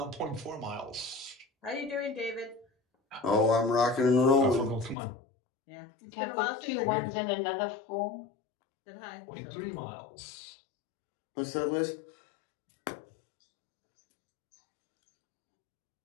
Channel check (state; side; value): drops out; right; at 5.0 s